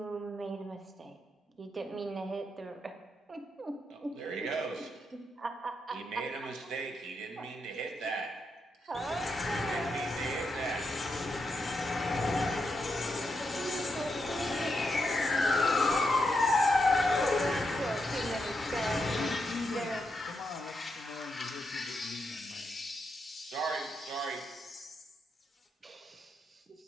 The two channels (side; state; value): both; normal; correlation 0.83